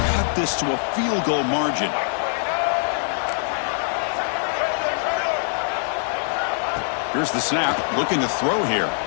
cut this to a field goal margin. Here's the snap, looking to throw here.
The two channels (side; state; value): right; silent; 63 dB below the other